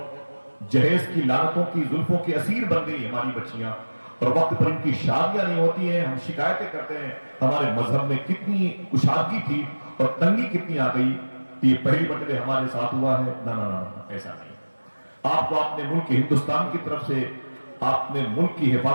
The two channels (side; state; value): both; inverted; correlation -1.00